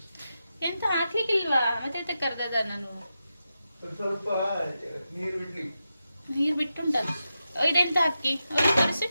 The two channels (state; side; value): inverted; both; correlation -0.89